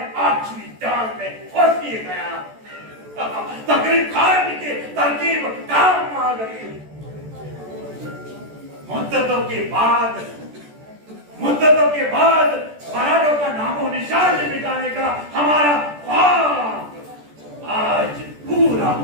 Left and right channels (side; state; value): left; late; 14 ms